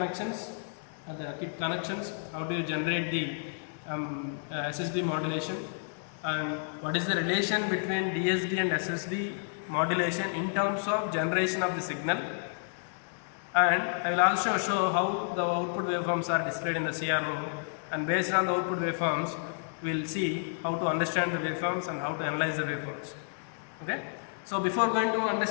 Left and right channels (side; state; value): right; silent; digital silence